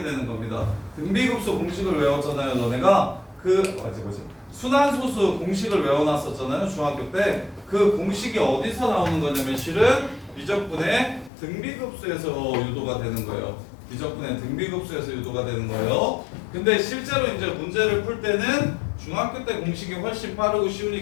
되는 겁니다. 등비급수 공식을 외웠잖아요. 너네가 뭐지? 순환소수 공식을 외워놨었잖아요. 중학교 때. 그 공식이 어디서 나오는 거냐면 실은 미적분의 등비급수에서 유도가 되는 거예요. 미적분의 등비급수에서 유도가 되는 거예요. 근데 실제로 이제 문제를 풀 때는 중학교 때 공식이 훨씬 빠르고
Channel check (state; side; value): drops out; right; at 11.3 s